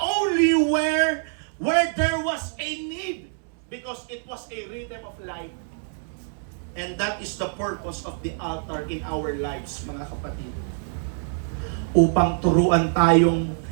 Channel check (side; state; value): left; silent; 62 dB below the other